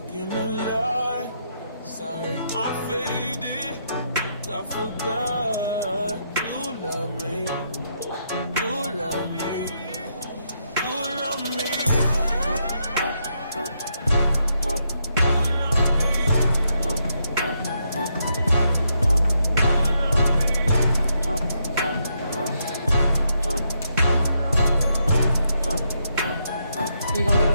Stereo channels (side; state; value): both; inverted; correlation -0.78